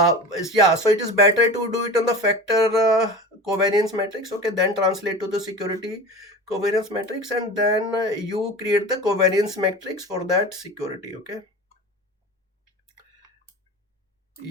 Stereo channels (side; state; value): both; normal; correlation 0.32